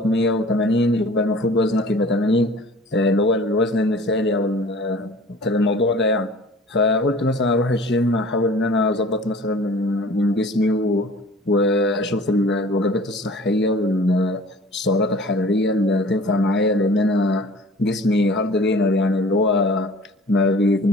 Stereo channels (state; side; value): normal; both; correlation 0.46